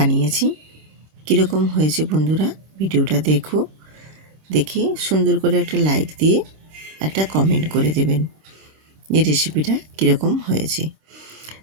কীরকম হয়েছে বন্ধুরা, ভিডিওটা দেখে সুন্দর করে একটা লাইক দিয়ে একটা কমেন্ট করে দেবেন এই রেসিপিটা কীরকম হয়েছে।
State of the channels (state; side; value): late; left; 26 ms